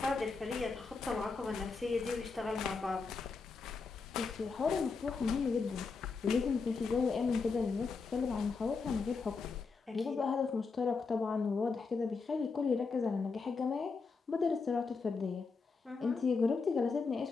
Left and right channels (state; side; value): quieter; right; 4.6 dB